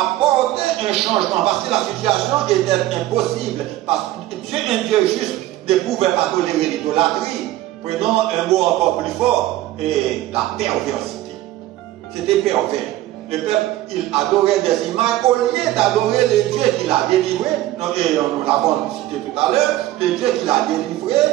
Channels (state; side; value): quieter; left; 15.2 dB